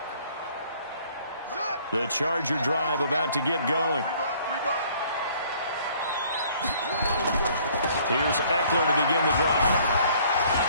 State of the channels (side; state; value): both; inverted; correlation -0.58